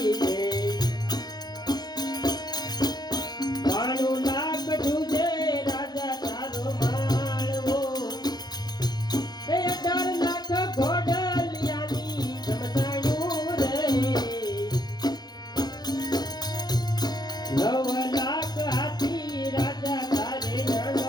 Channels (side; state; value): right; late; 0.20 ms